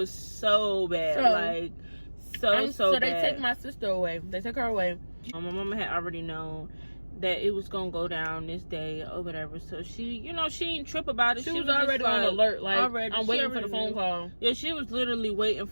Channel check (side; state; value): both; inverted; correlation -1.00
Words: so bad. So bad. They take my sister away. They took her away. My mama had already known that it was going to go down this day or whatever. So she, you know, she didn't trip about it. She was already on alert. Like, I'm waiting for the phone knew. call. Yeah, she was literally waiting